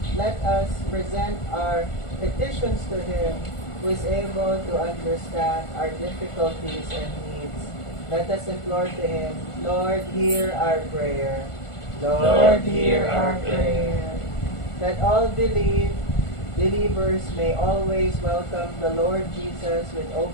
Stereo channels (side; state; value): right; late; 1.4 ms